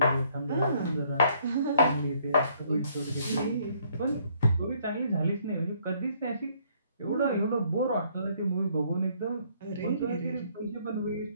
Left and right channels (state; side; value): inverted; both; correlation -0.66